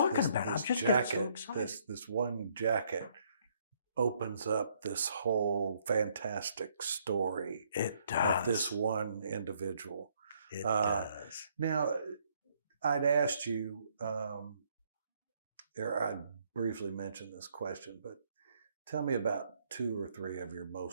about it. I'm just getting so excited. This one jacket opens up this whole fantastic story of this one individual. It does. Now, I'd asked you, I briefly mentioned this question, but tell me about 2 or 3 of your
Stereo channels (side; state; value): both; inverted; correlation -0.69